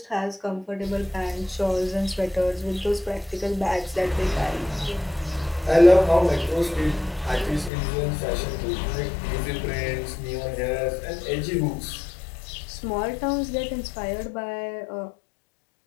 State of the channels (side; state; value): right; drops out; at 7.7 s